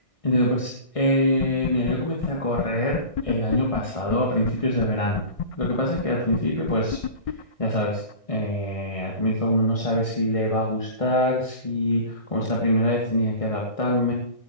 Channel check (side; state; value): right; late; 1.6 ms